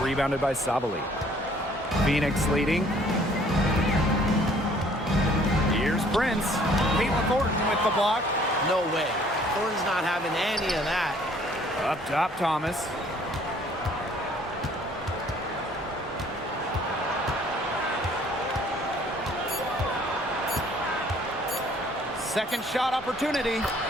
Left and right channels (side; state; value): both; normal; correlation 0.58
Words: rebounded by Sabali. Phoenix leading. Here's Prince. Caitlin Thornton with the block. No way. Thornton's not having any of that. Up top, Thomas. Second shot opportunity,